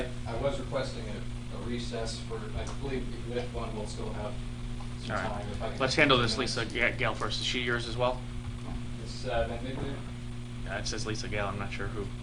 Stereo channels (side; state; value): both; identical; correlation 1.00